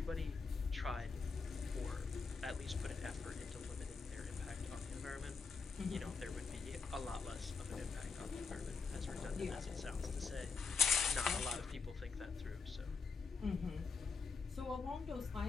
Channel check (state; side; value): quieter; right; 4.8 dB